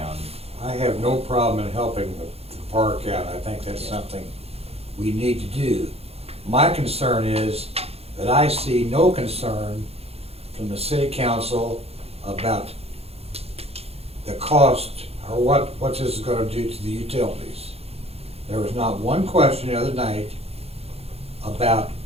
I have no problem in helping the park out. I think that's something we need to do. My concern is that I see no concern from the city council about the cost or what this is gonna do to the utilities. There was not one question the other night about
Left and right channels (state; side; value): late; left; 0.29 ms